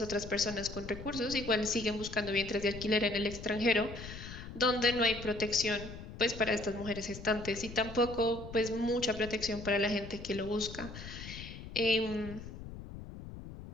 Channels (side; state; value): left; noise; rumble, 12 dB below the sound